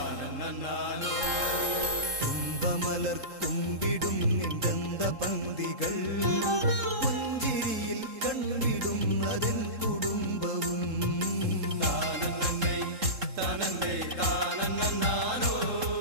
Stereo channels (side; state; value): left; late; 3.7 ms